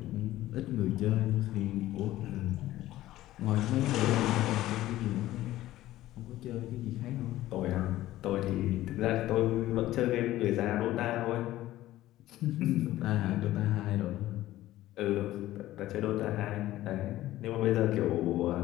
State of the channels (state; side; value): quieter; right; 15.2 dB